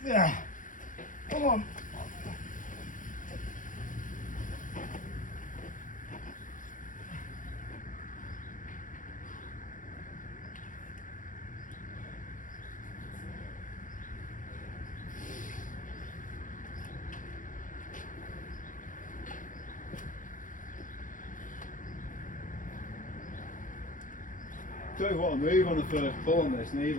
Yeah. Come on. Don't want to move on the first pull on this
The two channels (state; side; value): late; right; 0.38 ms